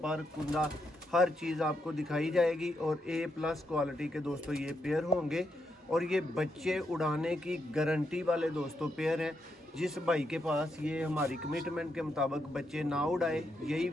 कुंदा हर चीज़ आपको दिखाई जाएगी और A+ क्वालिटी के दोस्तों ये पेयर होंगे और ये बच्चे उड़ाने की गारंटी वाले दोस्तों पेयर हैं। जिस भाई के पास ये हमारी कमिटमेंट के मुताबिक बच्चे ना उड़ाए, यही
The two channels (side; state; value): both; normal; correlation 0.81